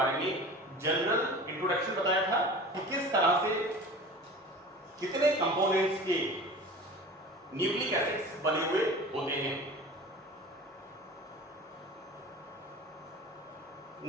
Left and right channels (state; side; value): normal; both; correlation 0.38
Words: में जनरल इंट्रोडक्शन बताया था कि किस तरह से कितने कंपोनेंट्स के न्यूक्लिक एसिड्स बने हुए होते हैं.